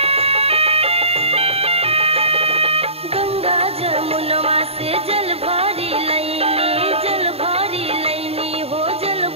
जमुनवा से जल भरी लैनी, जल भरी लैनी हो जल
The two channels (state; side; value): late; left; 0.29 ms